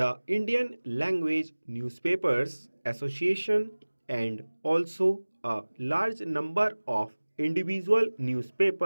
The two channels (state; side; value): inverted; both; correlation -1.00